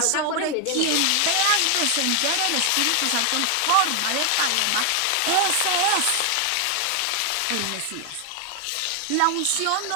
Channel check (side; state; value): both; different; correlation 0.00